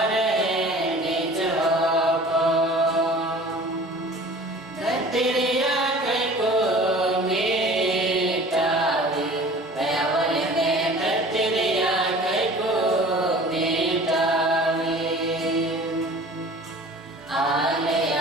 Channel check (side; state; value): both; normal; correlation 0.44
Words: निज होपन धरतिया कई को मिटावी पैवल में धरतिया कई को मिटावी